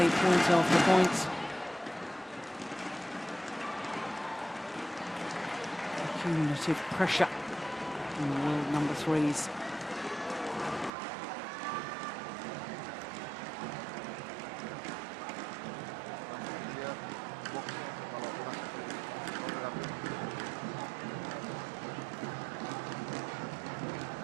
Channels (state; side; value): drops out; left; at 10.9 s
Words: point after point. Cumulative pressure on the world number 3s.